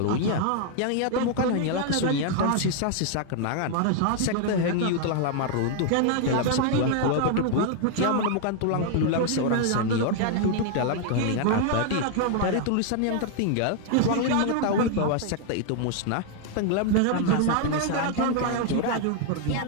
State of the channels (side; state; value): both; different; correlation 0.00